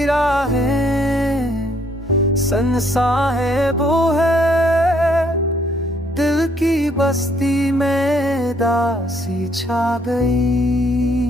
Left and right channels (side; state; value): both; normal; correlation 0.67